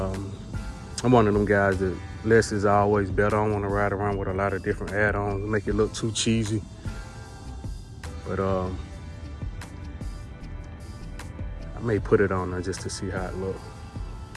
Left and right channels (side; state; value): both; identical; correlation 1.00